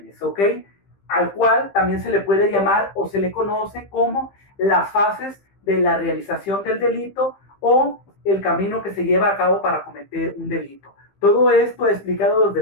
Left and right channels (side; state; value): right; late; 15 ms